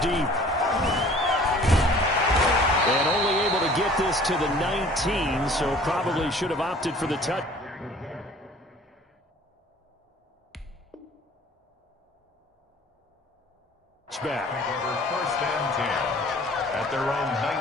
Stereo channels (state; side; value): normal; both; correlation 0.50